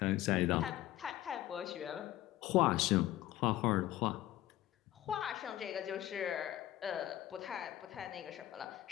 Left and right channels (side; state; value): right; quieter; 14.3 dB